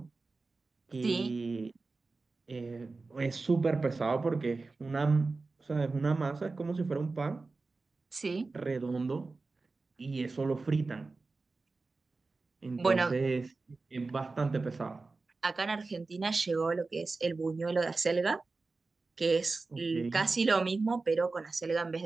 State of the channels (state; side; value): quieter; left; 3.8 dB